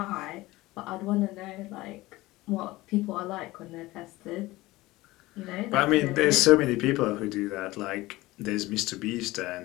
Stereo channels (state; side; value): quieter; right; 19.1 dB